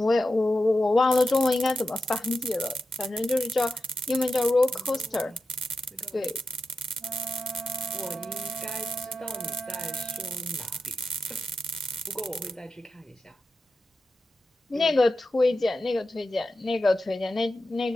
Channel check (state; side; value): normal; both; correlation 0.91